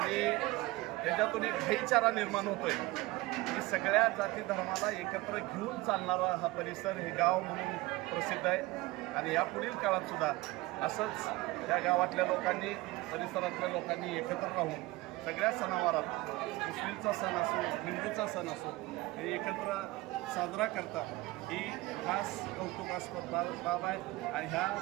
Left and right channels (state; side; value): quieter; left; 20.5 dB